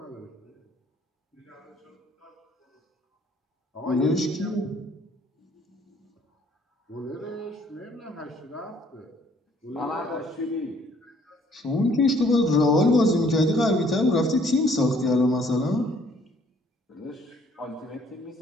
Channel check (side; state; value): both; normal; correlation 0.61